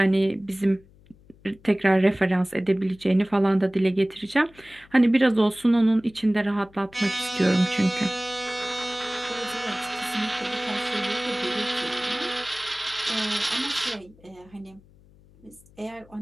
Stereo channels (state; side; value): noise; left; hum, 27 dB below the sound